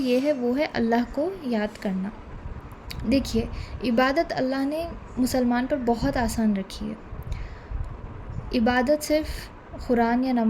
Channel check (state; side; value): identical; both; correlation 1.00